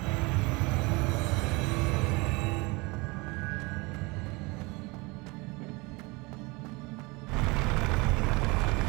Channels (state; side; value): quieter; left; 25.7 dB